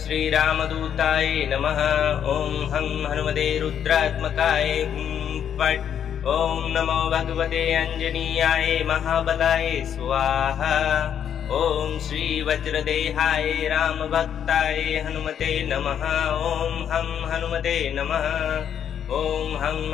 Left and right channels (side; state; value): right; quieter; 8.9 dB